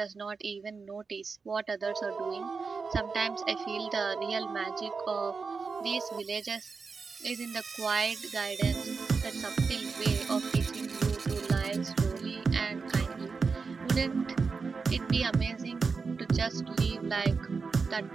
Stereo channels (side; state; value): left; quieter; 4.8 dB